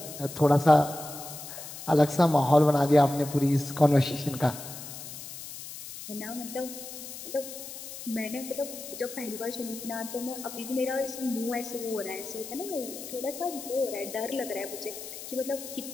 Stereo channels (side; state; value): left; noise; hiss, 11 dB below the sound